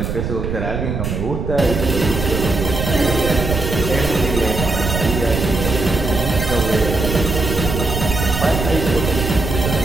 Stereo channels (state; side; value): noise; right; rumble, 3 dB below the sound